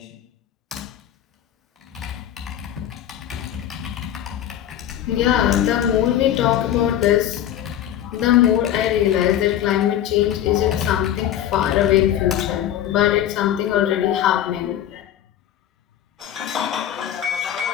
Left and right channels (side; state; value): right; quieter; 11.2 dB